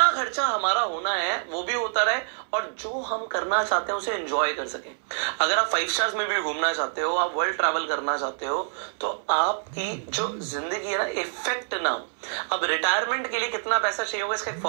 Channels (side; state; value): left; silent; digital silence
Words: खर्चा हमारा होना है वो भी होता रहे, और जो हम करना चाहते हैं उसे एंजॉय कर सकें। अगर आप 5 स्टार्स में भी घूमना चाहते हो, आप वर्ल्ड ट्रैवल करना चाहते हो, तो आपकी जो जिंदगी है ना इफेक्ट ना हो। अब रिटायरमेंट के लिए कितना पैसा चाहिए होगा इसका एक